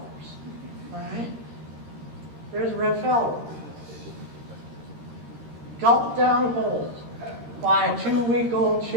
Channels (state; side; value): late; left; 13 ms